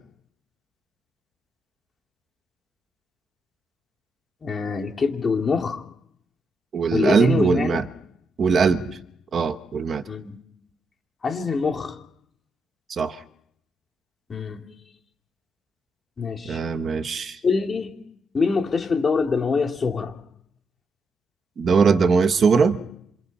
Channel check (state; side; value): normal; both; correlation 0.81